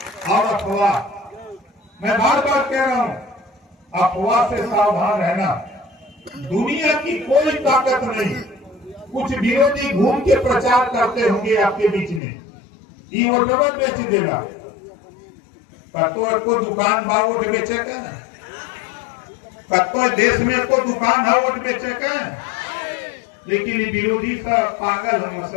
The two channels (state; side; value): drops out; right; at 12.2 s